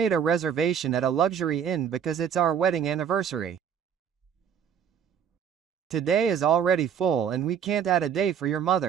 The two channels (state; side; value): quieter; left; 8.1 dB